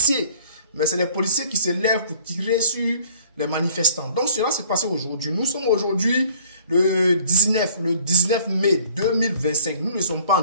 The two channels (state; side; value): inverted; both; correlation -0.53